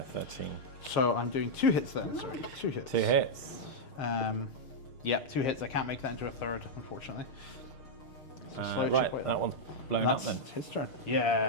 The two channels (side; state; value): right; late; 6.6 ms